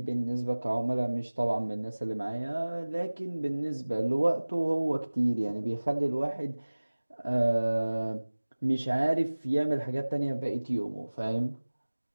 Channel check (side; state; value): both; inverted; correlation -1.00